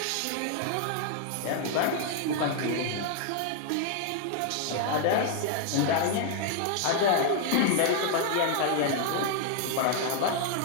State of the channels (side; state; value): both; different; correlation 0.00